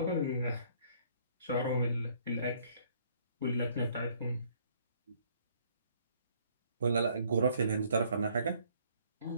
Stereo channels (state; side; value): inverted; both; correlation -0.62